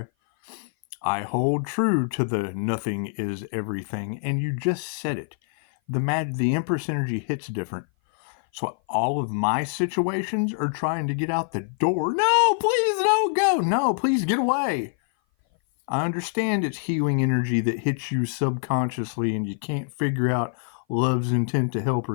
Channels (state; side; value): silent; right; 57 dB below the other